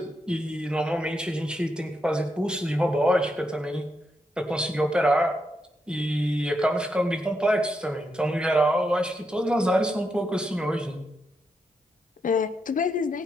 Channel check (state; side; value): normal; both; correlation 0.82